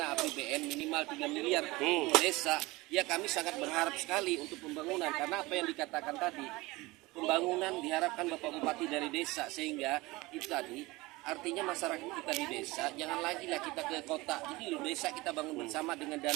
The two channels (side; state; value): left; quieter; 21.7 dB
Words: APBN minimal 3 miliar untuk desa, ya kami sangat berharap sekali untuk pembangunan karena apa yang dikatakan tadi pembangunan diharapkan Bapak Bupati dari desa sehingga itu tadi artinya masyarakat kita di desa jangan lagi lah kita ke kota. Jadi di desa kita bangun bersama dengan